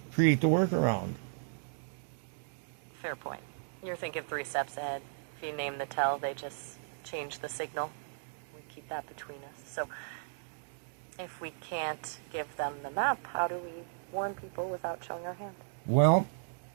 create the workaround. fair point. You're thinking 3 steps ahead. If you name the tell, they just change the signal. We keep that between us. So if we can't give them the map, how do we warn people without showing our hand? Well,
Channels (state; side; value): silent; left; digital silence